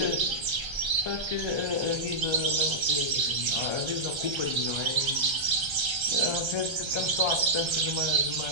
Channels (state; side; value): late; left; 1.3 ms